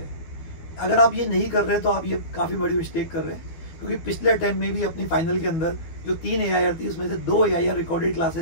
अगर आप ये नहीं कर रहे तो आप ये काफ़ी बड़ी मिस्टेक कर रहे हैं, क्योंकि पिछले अटेम्प्ट में भी अपनी फाइनल के अंदर जो 3 AIR थी उसमें से 2 AIR रिकॉर्डेड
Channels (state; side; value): late; right; 12 ms